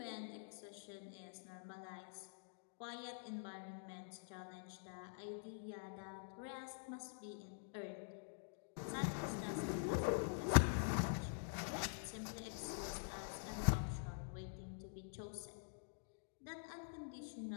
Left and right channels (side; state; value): right; silent; digital silence